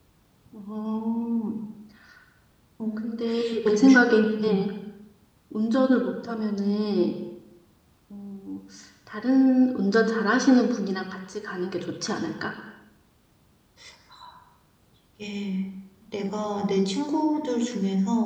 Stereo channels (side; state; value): both; identical; correlation 1.00